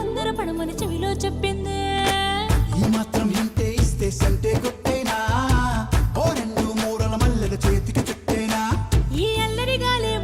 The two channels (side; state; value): both; identical; correlation 1.00